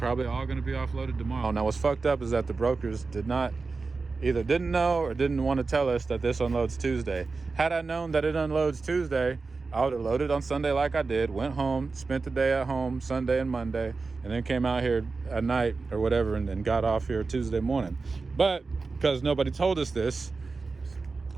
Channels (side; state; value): left; quieter; 4.1 dB